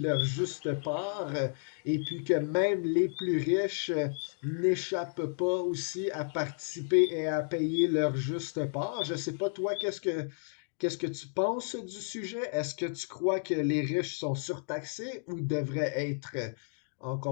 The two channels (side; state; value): right; silent; digital silence